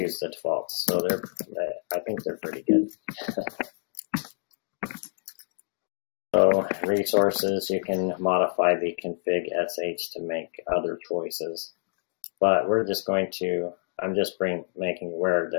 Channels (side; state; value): right; silent; digital silence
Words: the defaults, so I think they're pretty good. So resources, you can modify the config sh to make other choices, but we're just going to, I'm just making aware